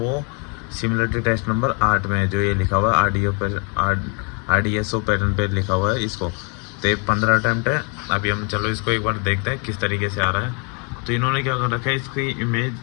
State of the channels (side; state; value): right; quieter; 35.4 dB